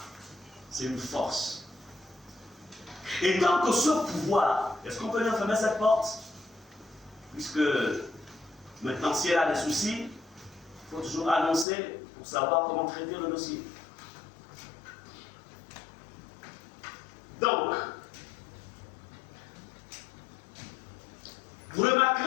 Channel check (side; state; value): right; drops out; at 11.7 s